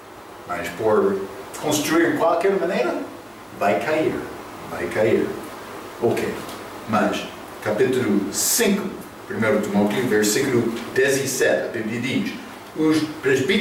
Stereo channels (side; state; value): both; identical; correlation 1.00